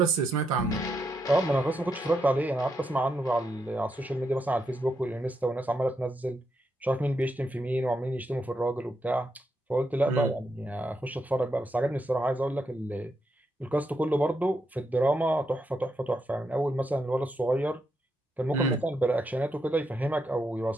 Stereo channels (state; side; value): normal; both; correlation 0.82